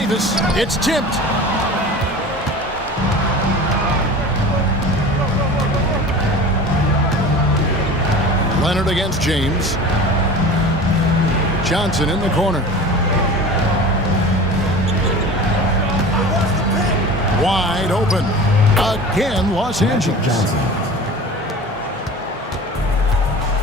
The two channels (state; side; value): normal; both; correlation 0.37